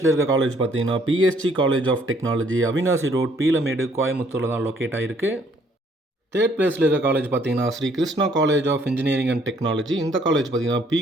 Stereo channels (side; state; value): both; normal; correlation 0.64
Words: இருக்க காலேஜ் பார்த்தீங்கன்னா PSG college of technology, Avinashi road, Peelamedu, கோயம்புத்தூரில் தான் லொக்கேட் ஆகிருக்கு. தேர்ட் பிளேஸில் இருக்க காலேஜ் பார்த்தீங்கன்னா Sri Krishna college of engineering and technology. இந்த காலேஜ் பார்த்தீங்கன்னா